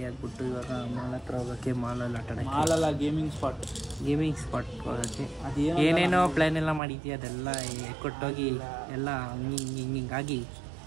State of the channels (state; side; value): drops out; left; at 6.8 s